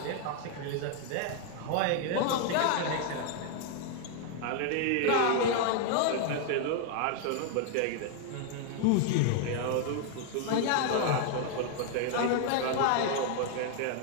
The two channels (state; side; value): different; both; correlation 0.00